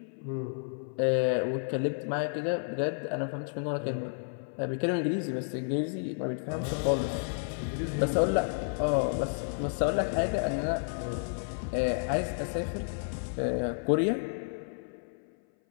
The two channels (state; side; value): silent; right; 56 dB below the other